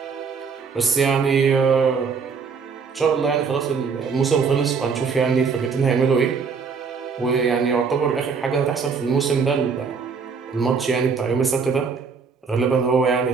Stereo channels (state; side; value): quieter; left; 5.5 dB